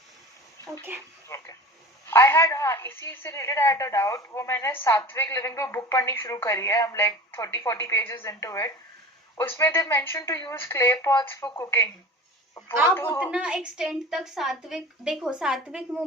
Okay Okay. आई हैड, हाँ इसी से related I had a doubt. वो मैंने सात्विक लिविंग पे बुक पढ़नी शुरू करी है, I am like 30-40 pages into it. उसमें they mention to use clay pots for cooking. आप उतना एक्सटेंड तक सात्विक, देखो सात्विक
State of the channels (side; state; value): both; normal; correlation 0.37